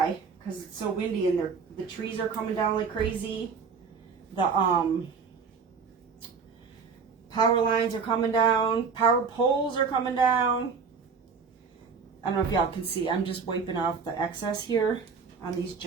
Because it's so windy and the trees are coming down like crazy. The power lines are coming down. Power poles are coming down. I don't know if y'all can see. I'm just wiping off the excess here on these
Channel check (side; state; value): left; quieter; 5.5 dB